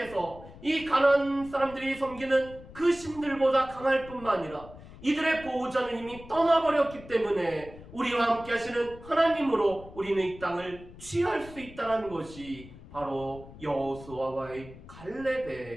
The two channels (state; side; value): noise; left; rumble, 17 dB below the sound